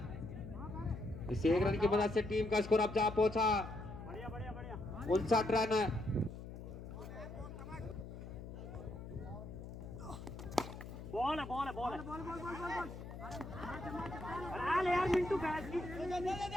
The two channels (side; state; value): left; noise; hum, 11 dB below the sound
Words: इस 1 रन की मदद से टीम का स्कोर अब जा पहुंचा 59 रन बॉल अरे यार मिंटू